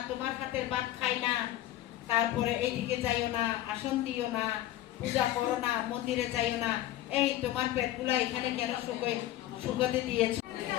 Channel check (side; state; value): right; quieter; 14.1 dB